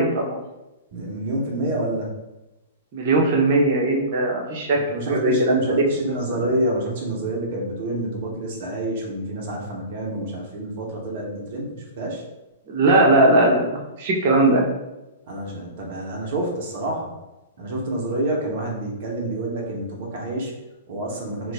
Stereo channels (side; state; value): both; inverted; correlation -0.34